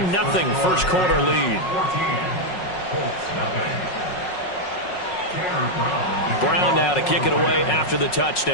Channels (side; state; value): right; late; 5.5 ms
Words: first quarter lead. Brown now to kick it away after the